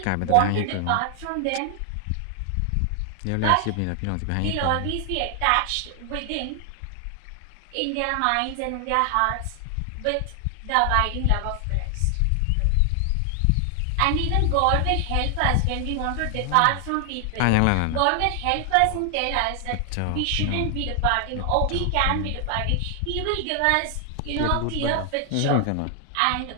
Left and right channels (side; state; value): both; different; correlation 0.00